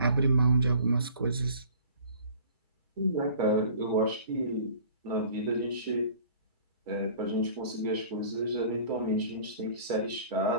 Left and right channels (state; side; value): inverted; both; correlation -0.49